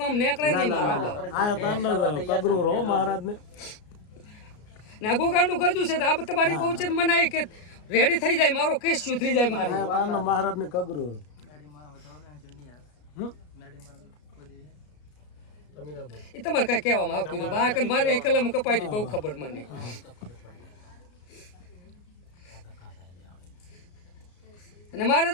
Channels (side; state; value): right; late; 33 ms